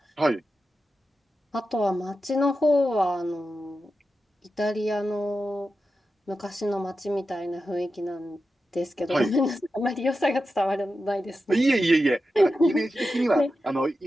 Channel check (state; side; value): normal; both; correlation 0.91